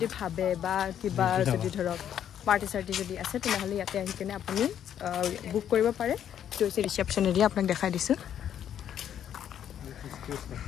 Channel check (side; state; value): right; quieter; 9.8 dB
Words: ভাবে বা কিবা যদি ধৰক পাৰ্টি চাৰ্টি যদি আছে তেনেহলে ইয়াতে আহি কেনে আপুনি বুক কৰিব পাৰে তো হৈছে ৰিসেপশন এৰিয়া আপোনাক দেখাই দিছো